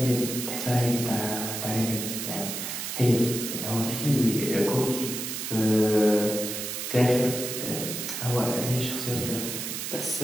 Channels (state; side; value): noise; right; hiss, 5 dB below the sound